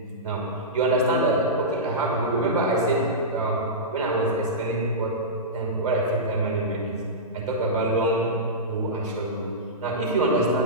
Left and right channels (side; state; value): both; normal; correlation -0.16